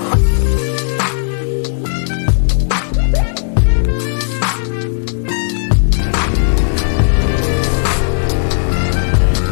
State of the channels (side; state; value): right; silent; digital silence